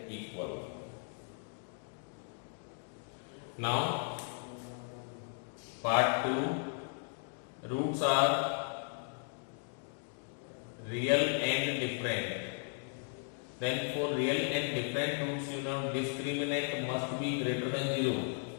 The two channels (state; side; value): silent; right; 54 dB below the other